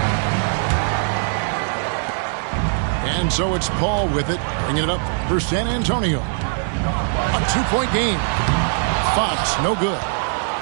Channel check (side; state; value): left; silent; 65 dB below the other